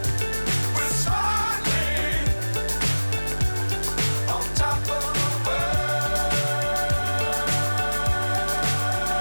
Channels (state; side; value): inverted; both; correlation -1.00